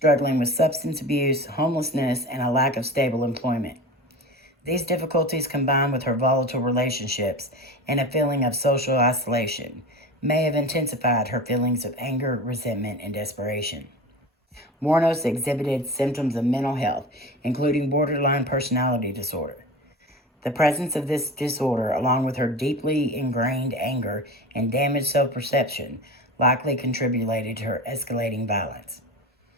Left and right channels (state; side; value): normal; both; correlation 0.31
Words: with substance abuse, homelessness, and a lack of stable employment. These difficulties, combined with her volatile relationships and a feeling of social isolation, may have intensified her feelings of anger, resentment, and desperation. Wuornos exhibited symptoms of mental health, including borderline personality disorder. The presence of this disorder, along with her deeply ingrained anger and damaged self-perception, likely contributed to her escalating violence.